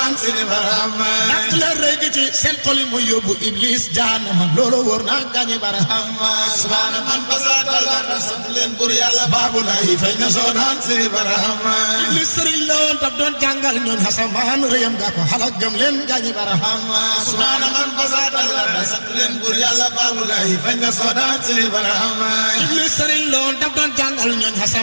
seeni barahama dak leen rëy ci seen xol yi mooy yóbbu iblis jaanama loolu wóor na gaañi barahama subhaana man basat talarda sant leen buur yàlla baabu laay fay na sodaan seeni barahama iblis sëriñ la woon daf doon jàngal ñooñ xasamaan rëyam gaa ko xalak gëm leen gaañi barahama subhaana man basat talarda sant leen buur yàlla baabu laay fay na sodaan seeni barahama iblis sëriñ la woon daf doon jàngal ñooñ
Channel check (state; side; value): inverted; both; correlation -1.00